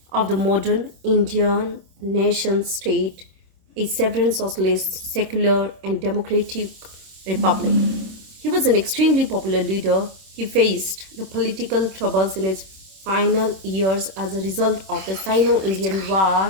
of the modern Indian nation state, a sovereign socialist, secular, and democratic republic. He was an extremely popular leader. He faced the political troubles in his final years as a result of the Sino-Indian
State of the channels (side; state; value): left; late; 26 ms